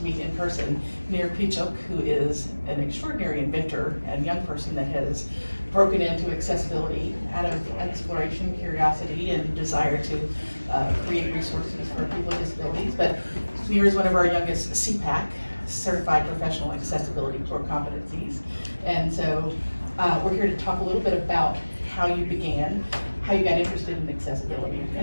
meet in person Nir Pechuk, who is an extraordinary inventor and young person that has broken into accessibility out of exploration, curiosity, and desire to create resources for people with disabilities. But Nir is one of our youngest CPACC, Certified Professional Accessibility Core Competencies. And so we're here to talk a little bit about how you began, how you got interested in accessibility,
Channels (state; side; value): inverted; both; correlation -1.00